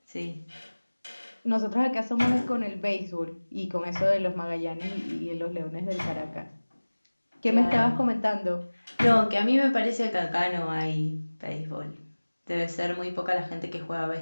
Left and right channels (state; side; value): inverted; both; correlation -1.00